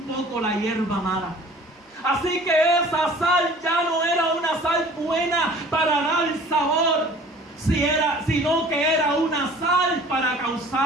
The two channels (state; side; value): normal; both; correlation 0.48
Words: poco la hierba mala. Así que esa sal ya no era una sal buena para dar sabor, sino que era una sal para